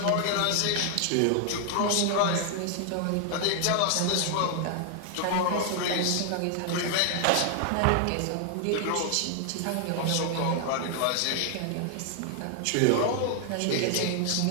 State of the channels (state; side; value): different; both; correlation 0.00